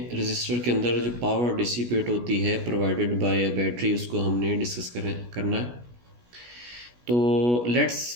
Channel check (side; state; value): left; late; 16 ms